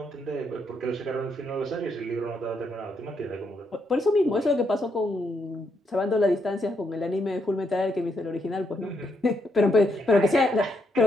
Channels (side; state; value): both; normal; correlation 0.77